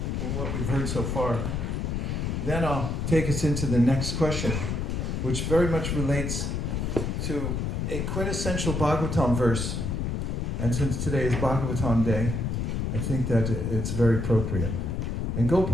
from what we've heard so far. Then I'll take us into the next question, which very much relates to a quintessential Bhagavatam verse. And since today is Bhagavatam Day, I think that it's very appropriate. And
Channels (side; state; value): left; noise; rumble, 1 dB below the sound